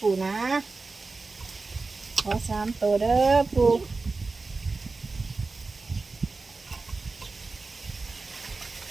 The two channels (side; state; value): left; quieter; 3.8 dB